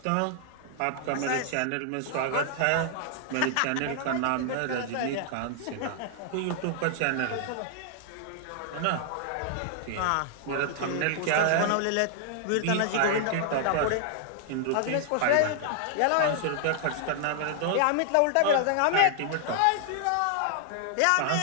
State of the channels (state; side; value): different; both; correlation 0.00